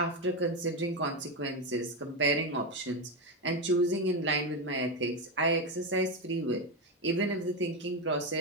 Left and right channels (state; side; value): normal; both; correlation 0.11